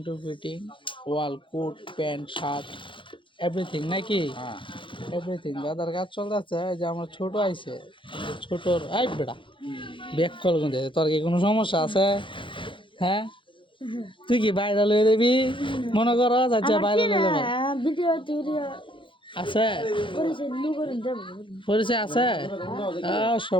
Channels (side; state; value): right; late; 0.24 ms